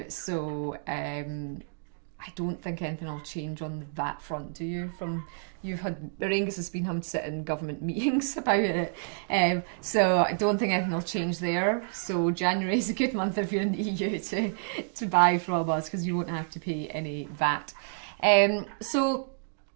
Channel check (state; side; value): silent; left; digital silence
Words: So I don't think anything will change on that front, do you? Auraengus has been having to sit in government meetings about it, so I don't think anything will change there. So January is a good month if you're in the EU to buy from us because you won't have to pay any VAT. So